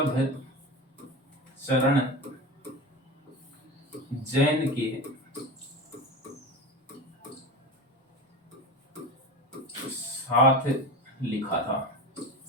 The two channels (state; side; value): normal; both; correlation 0.26